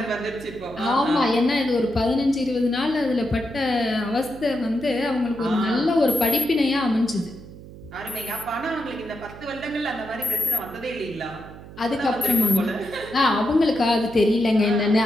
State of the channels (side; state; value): right; noise; hum, 16 dB below the sound